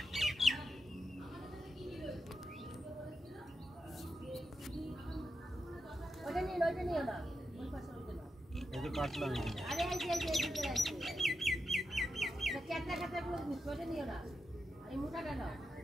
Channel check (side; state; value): both; normal; correlation 0.87